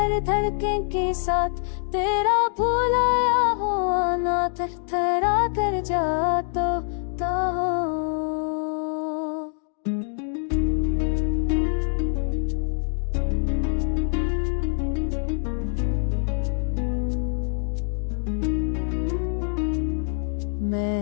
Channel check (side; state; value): right; silent; 62 dB below the other